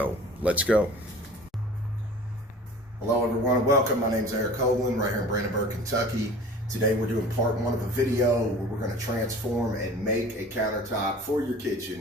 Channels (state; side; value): normal; both; correlation 0.42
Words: let's go. Hello everyone, welcome. My name's Eric Hoagland, right here in Brandenburg, Kentucky. Today we're doing part one of a video where we're going to transform and make a countertop for your